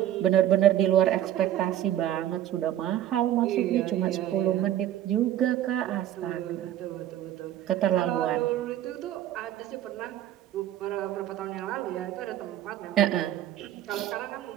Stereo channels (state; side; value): quieter; left; 12.2 dB